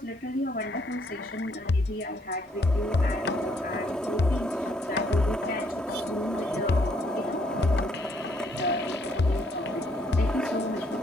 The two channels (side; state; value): both; normal; correlation 0.69